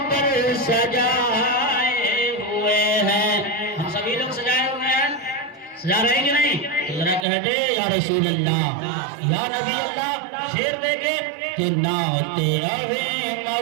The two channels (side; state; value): left; drops out; at 7.2 s